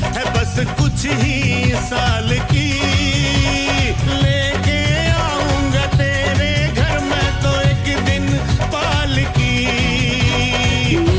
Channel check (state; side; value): identical; both; correlation 1.00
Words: है बस कुछ ही साल की, लेके आऊंगा तेरे घर में तो एक दिन पालकी।